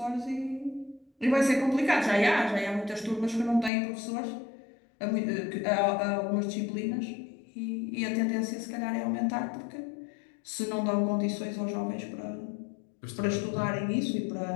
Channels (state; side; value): drops out; right; at 3.7 s